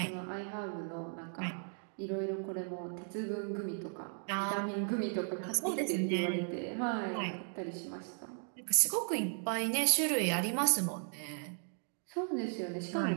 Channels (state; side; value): silent; left; 54 dB below the other